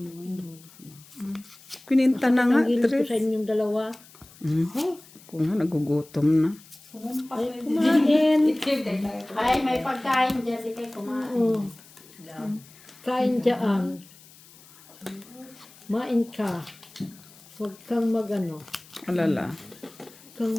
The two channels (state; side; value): noise; left; hiss, 23 dB below the sound